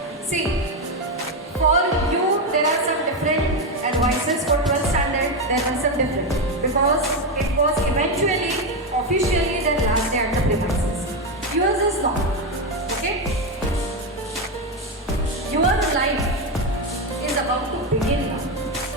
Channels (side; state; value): both; normal; correlation 0.09